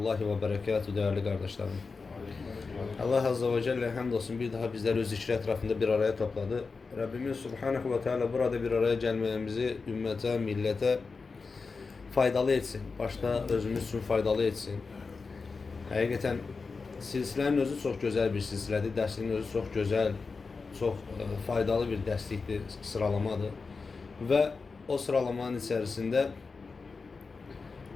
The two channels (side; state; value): right; quieter; 4.5 dB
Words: ve berekatuhu değerli kardeşlerim. Allah Azze ve Celle hamdolsun bir daha bizleri öz zikri etrafında bir araya topladı. Rabbimiz Subhanahu ve Teala burada bir araya gelmemizi ümmete, millete faydalı etsin. Başta özümüz için faydalı etsin. Hakikaten silsilenin özü çok güzel bir silsiledir. Dersinin özü çok güzel, çok faydalı bir dersliktir, sıralamadır. Ve o sıralamanın içerisinde